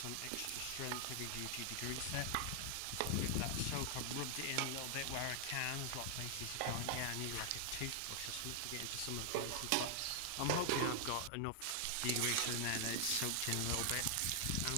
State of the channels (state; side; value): different; both; correlation 0.00